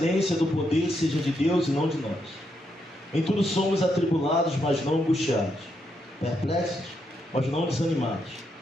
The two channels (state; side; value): normal; both; correlation 0.80